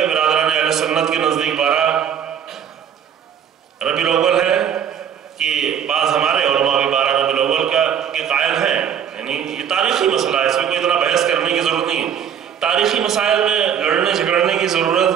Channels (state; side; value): quieter; left; 8.6 dB